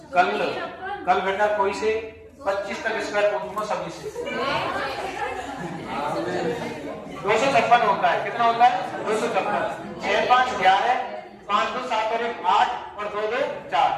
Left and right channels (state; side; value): identical; both; correlation 1.00